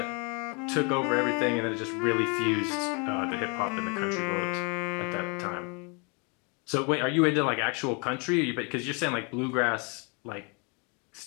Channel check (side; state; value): right; quieter; 33.1 dB